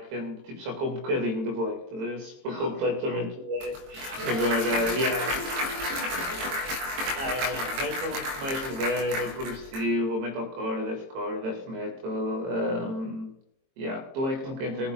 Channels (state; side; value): late; left; 22 ms